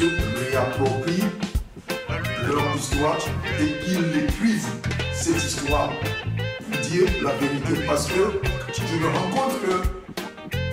réapproprient leur histoire et qu'ils écrivent cette histoire pour dire la vérité. Parce que je me rends compte que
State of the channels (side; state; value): both; identical; correlation 1.00